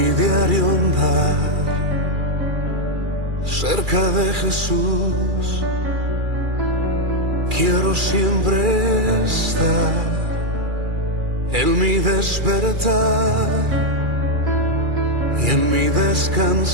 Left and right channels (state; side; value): late; left; 2.3 ms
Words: diario andar, cerca de Jesús, quiero siempre estar. En mi despertar y en mi